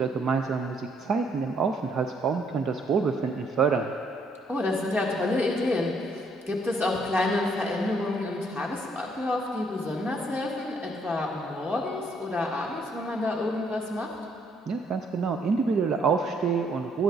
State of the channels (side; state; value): both; normal; correlation 0.69